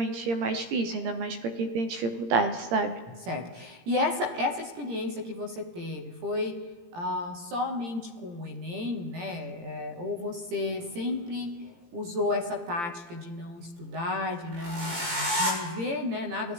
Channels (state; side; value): late; left; 17 ms